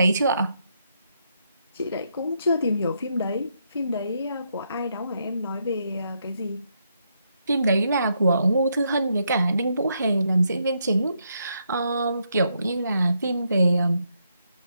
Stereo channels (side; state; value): both; inverted; correlation -0.78